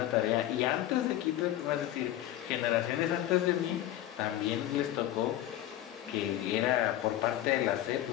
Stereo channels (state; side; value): quieter; right; 13.4 dB